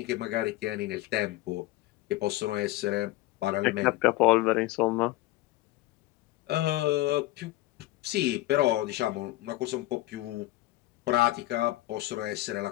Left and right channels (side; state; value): right; quieter; 17.5 dB